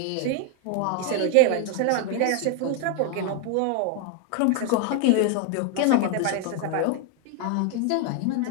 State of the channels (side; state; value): both; different; correlation 0.01